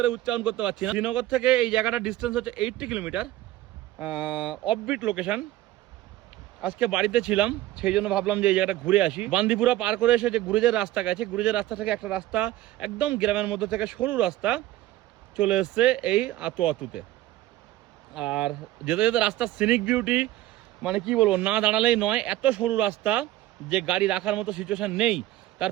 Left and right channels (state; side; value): quieter; left; 15.2 dB